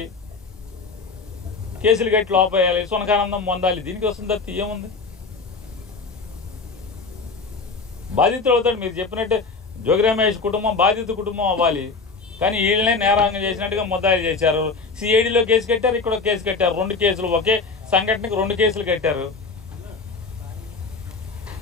కేసులు కట్టి లోపేయాలి, సునకానందం పొందాలి. దీనికి వస్తుంది తప్ప ఏముంది? బాధితులు అవుతాడు. మీరు చెప్పినట్టు జోగి రమేష్ కుటుంబం బాధిత కుటుంబం అవ్వాలి, కానీ వీళ్ళనే నేరాంగం చేసినట్టుగా ముద్దాయిలు చేశారు. సిఐడిలో కేసు కట్టారు, ఇక్కడ కేసు కట్టారు. 2 కేసులు, ఒకే సంఘటనకి 2 కేసులు కట్టారు.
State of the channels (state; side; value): quieter; right; 4.3 dB